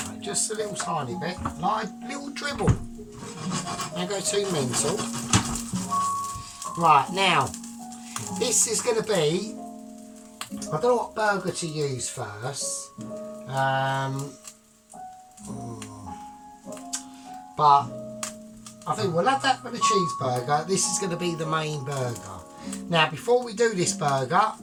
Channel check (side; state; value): both; identical; correlation 1.00